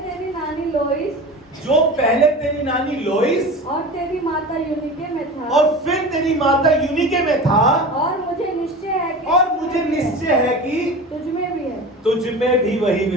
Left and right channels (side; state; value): both; normal; correlation 0.32